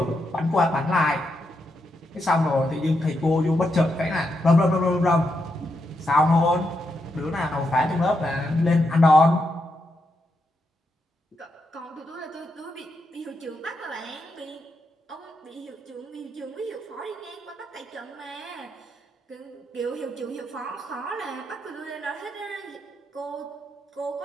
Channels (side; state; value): both; normal; correlation 0.83